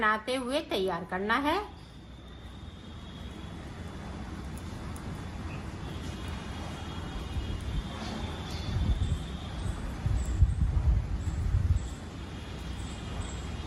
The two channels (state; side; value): identical; both; correlation 1.00